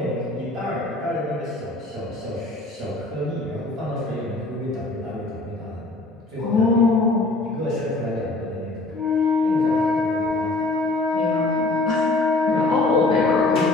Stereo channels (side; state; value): right; quieter; 3.0 dB